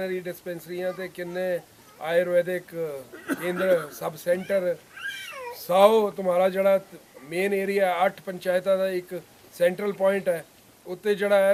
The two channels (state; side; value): identical; both; correlation 1.00